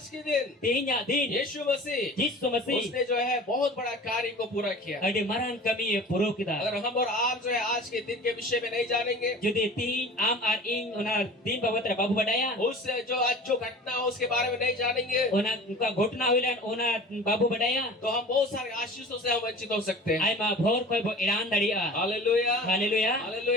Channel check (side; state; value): both; normal; correlation 0.40